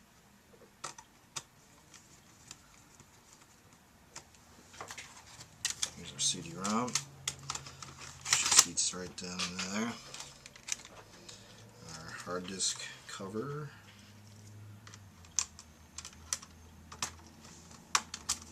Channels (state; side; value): identical; both; correlation 1.00